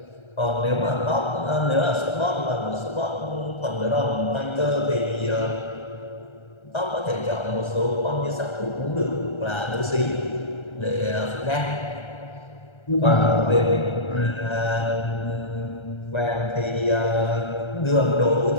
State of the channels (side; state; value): right; late; 1.3 ms